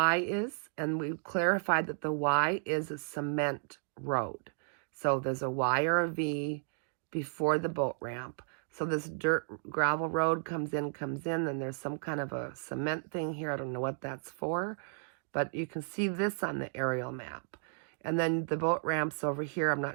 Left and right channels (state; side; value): silent; left; digital silence